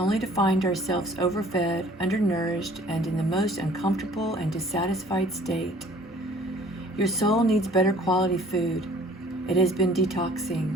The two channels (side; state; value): both; normal; correlation 0.53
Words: to find ourselves overfed, undernourished, and in the most uncomfortable and dissatisfied state. Your soul needs better quality food. It has been detoxing.